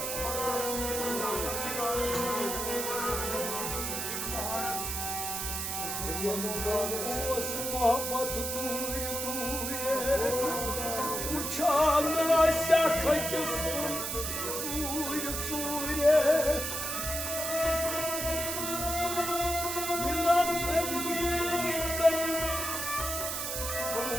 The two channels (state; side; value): noise; right; hiss, 3 dB below the sound